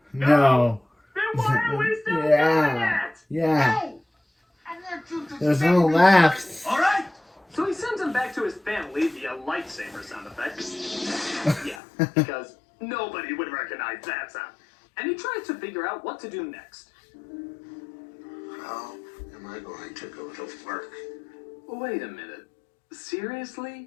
No. Then why are we still doing Yeah. it? Yeah. No! I want you to There's save no me. laughs. All right. So he sends him back to his family via lightsaber sound effects. Yeah, because nobody would recognize that sound. And he tries to figure out what to do next. How am I going to go to work? Wait a minute. Seriously?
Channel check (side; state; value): right; drops out; at 11.8 s